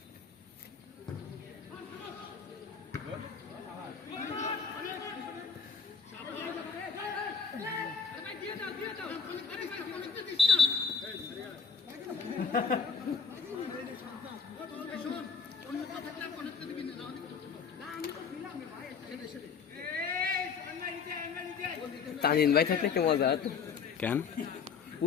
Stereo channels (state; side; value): quieter; right; 5.9 dB